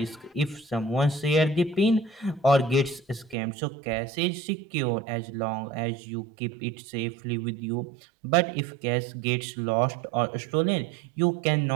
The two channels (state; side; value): drops out; left; at 3.4 s